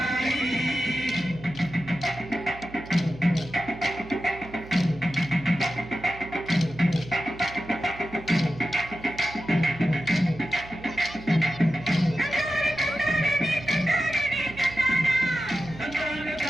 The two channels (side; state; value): right; noise; hum, 16 dB below the sound